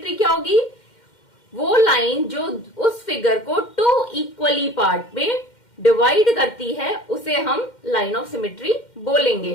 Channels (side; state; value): right; late; 2.1 ms